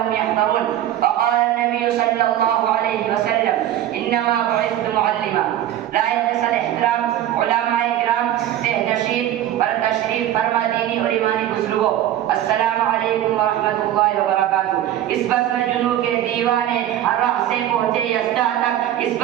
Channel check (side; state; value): left; quieter; 12.2 dB